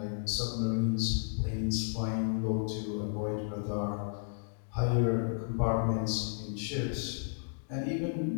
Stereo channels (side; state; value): right; silent; digital silence